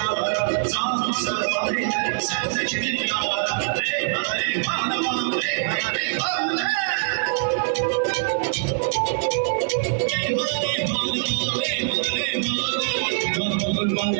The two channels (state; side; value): silent; left; 63 dB below the other